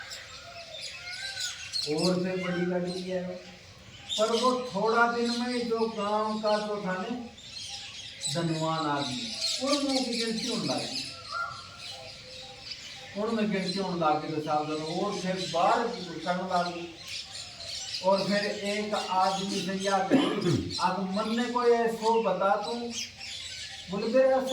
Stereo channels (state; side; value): identical; both; correlation 1.00